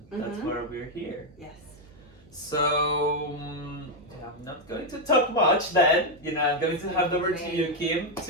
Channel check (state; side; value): noise; right; hum, 25 dB below the sound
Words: That's why we're here. Yes. So I'm not going to talk much then. I'm going to hand over to you, Kim,